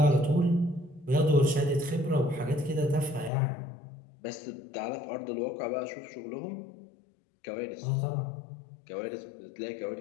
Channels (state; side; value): drops out; right; at 3.3 s